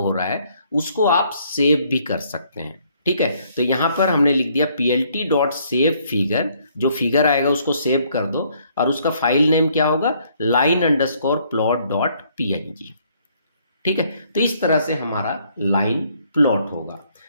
रहा है उसको आप सेव भी कर सकते हैं, ठीक है। तो यहाँ पर हमने लिख दिया plt.save_figure, जो फिगर आएगा उसको सेव कर दो और उसका फाइल नेम क्या होगा, line_plot.png, ठीक है। तो इस तरह से हमारा लाइन प्लॉट होगा।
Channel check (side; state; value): both; inverted; correlation -0.66